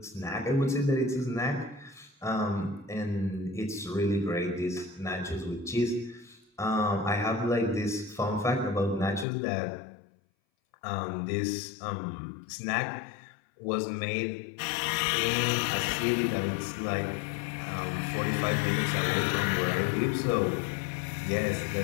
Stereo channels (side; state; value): right; drops out; at 9.2 s